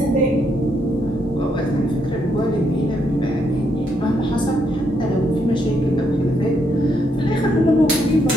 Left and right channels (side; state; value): both; normal; correlation 0.76